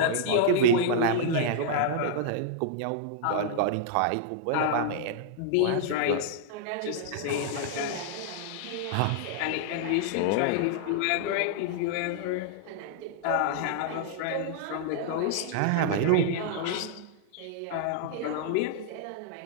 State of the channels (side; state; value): both; different; correlation -0.01